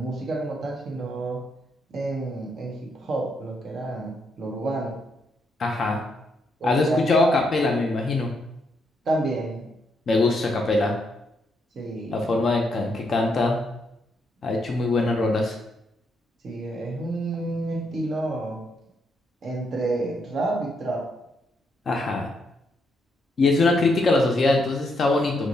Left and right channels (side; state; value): both; normal; correlation 0.77